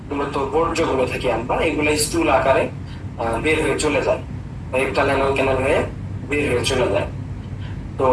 মূলত বর্জ্যগুলো থেকে আমরা, এগুলো স্থূল আকারে বের হয়ে চলে যায়, রেকটাল অ্যানাল ক্যানাল হয়ে বের হয়ে চলে যায়। তো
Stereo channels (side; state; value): both; identical; correlation 1.00